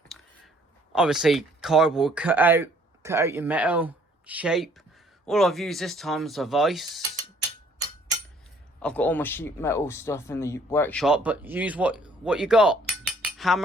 Obviously, cardboard cut out your metal shape. All I've used this time is a vise. I've got all my sheet metal stuff in the workshop, but use what you got.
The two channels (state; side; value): normal; both; correlation 0.61